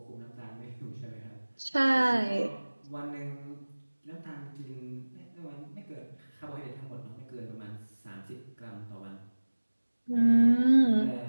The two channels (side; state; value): both; inverted; correlation -1.00